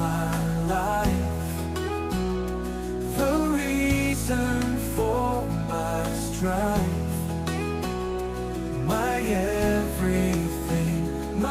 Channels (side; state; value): both; identical; correlation 1.00